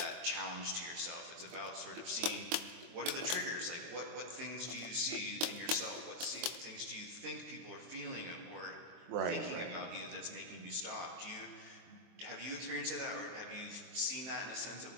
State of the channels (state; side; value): late; left; 23 ms